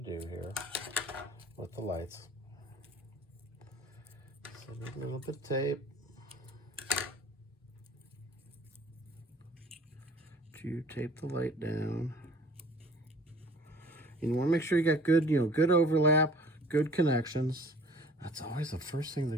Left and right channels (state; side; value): normal; both; correlation 0.50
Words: here with the lights. So we're going with the tape to tape the light down. And you want to make sure you got good, good overlap, good connections. That's always the first thing